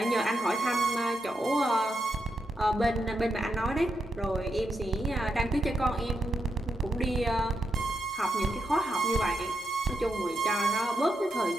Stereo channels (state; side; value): normal; both; correlation 0.84